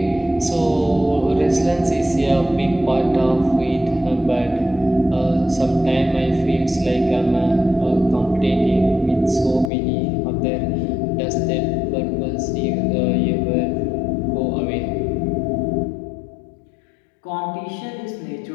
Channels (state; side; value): drops out; right; at 9.7 s